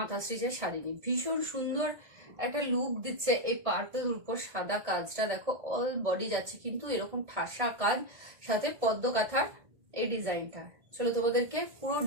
স্টিচের শাড়ি নিয়ে। ভীষণ সুন্দর একটা লুক দিচ্ছে এই পার্পল উপর সাদা কাজটা। দেখো অল বডি যাচ্ছে কিন্তু এরকম ঠাসা কাজ, সাথে পদ্ম কাঁথার এই ডিজাইনটা। চলো তোমাদেরকে পুরো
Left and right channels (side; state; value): left; late; 1.5 ms